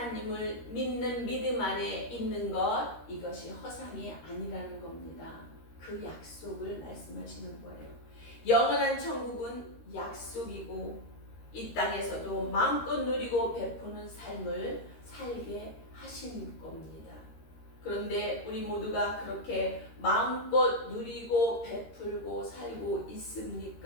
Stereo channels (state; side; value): late; right; 13 ms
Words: 믿는 믿음 안에 있는 것, 이것이 허상이 아니라는 겁니다. 그 약속을 말씀하시는 거예요. 영원한 천국은 약속이고 이 땅에서도 마음껏 누리고 베푸는 삶을 살게 하신 겁니다. 그런데 우리 모두가 그렇게 마음껏 누리고 베풀고 살고